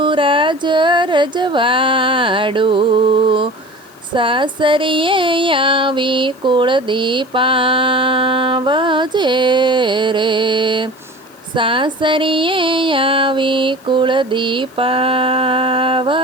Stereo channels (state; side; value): noise; left; hiss, 29 dB below the sound